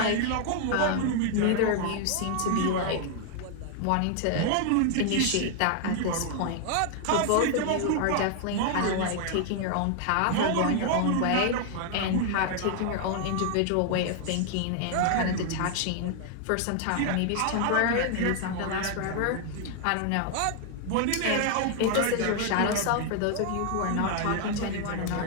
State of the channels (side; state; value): both; different; correlation 0.00